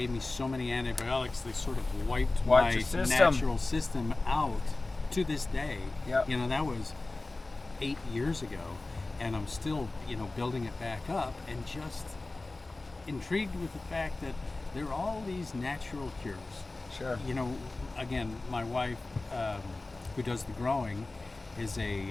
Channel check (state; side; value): quieter; right; 3.2 dB